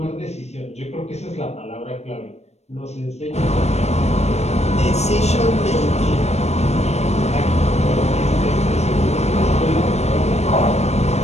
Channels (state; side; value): late; right; 0.32 ms